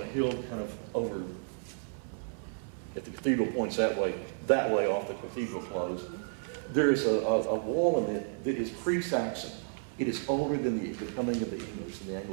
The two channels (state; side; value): silent; left; 56 dB below the other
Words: hill kind of over, if the cathedral points that way off the cathedral close, there is a wall in it that is pre-Saxon. It is older than the coming of the English and the